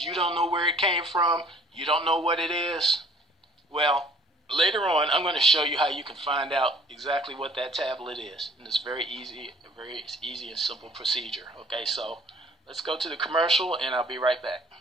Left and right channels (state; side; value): normal; both; correlation 0.55